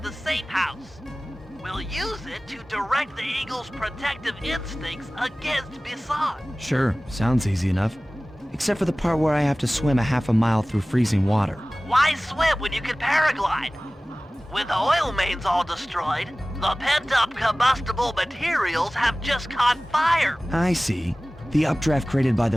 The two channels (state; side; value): normal; both; correlation 0.98